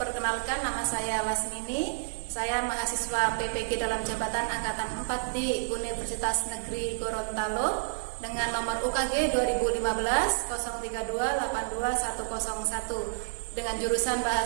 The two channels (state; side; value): silent; left; 58 dB below the other